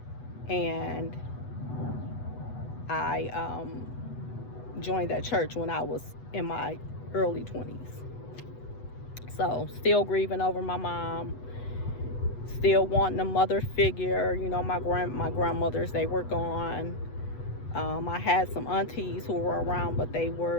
and I joined that church when I was in my early 20s. So, still grieving over my mom, still wanting a mother figure. You know, my grandmothers, they were gone. I had some aunties who were around, but they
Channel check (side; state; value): right; late; 8.1 ms